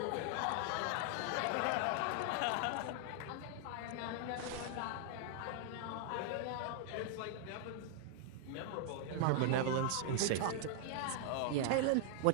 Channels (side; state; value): both; different; correlation 0.00